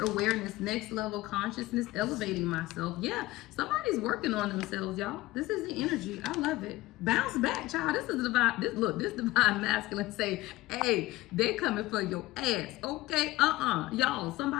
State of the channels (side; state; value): right; quieter; 18.5 dB